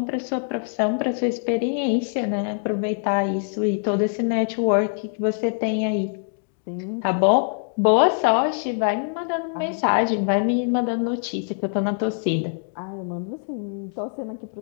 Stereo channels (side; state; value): right; silent; digital silence